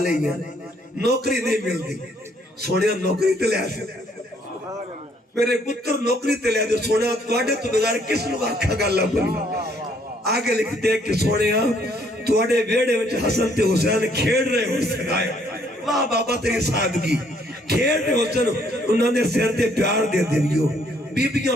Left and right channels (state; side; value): normal; both; correlation 0.66